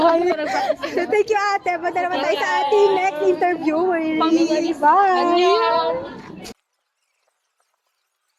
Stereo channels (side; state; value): both; identical; correlation 1.00